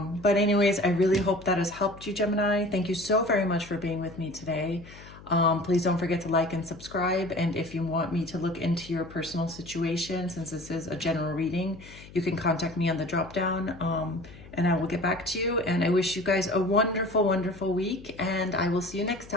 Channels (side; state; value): left; noise; hum, 19 dB below the sound